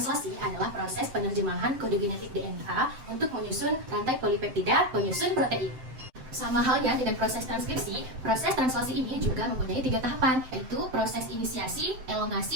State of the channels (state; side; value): late; left; 7.7 ms